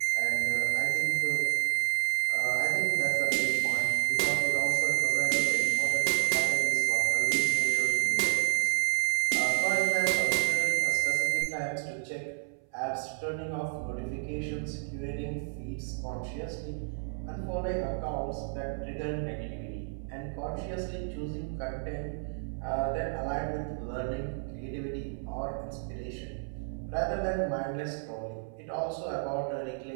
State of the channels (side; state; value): left; silent; 56 dB below the other